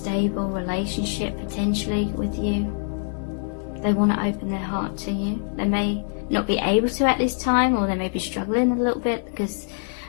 relationship potentially with you. They want to open their heart to you. They may not be able to at this time, or they may be struggling a little bit because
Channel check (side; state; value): right; silent; digital silence